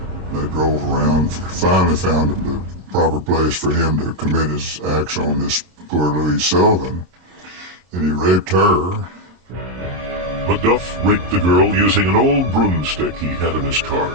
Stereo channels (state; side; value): late; left; 26 ms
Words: They drove around, finally found the proper place for him to commit his acts on this poor Louise Sullivan, and he raped her. McDuff raped the girl using an old broomstick he had in his car.